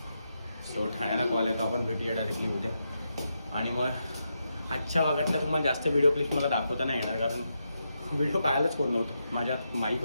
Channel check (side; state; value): both; inverted; correlation -0.84